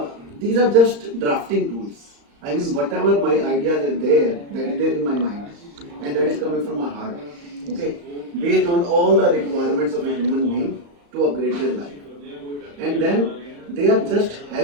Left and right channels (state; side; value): late; left; 35 ms